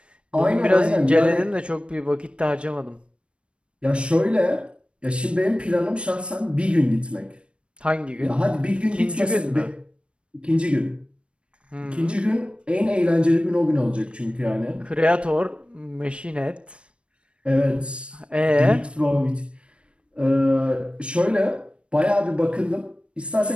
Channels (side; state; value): left; late; 0.058 ms